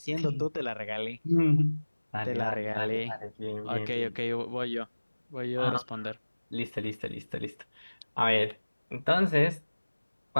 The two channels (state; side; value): inverted; both; correlation -1.00